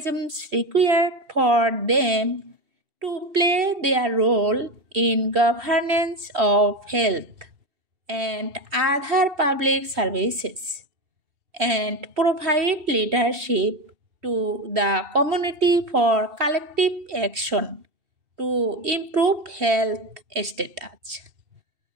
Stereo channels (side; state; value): left; late; 2.7 ms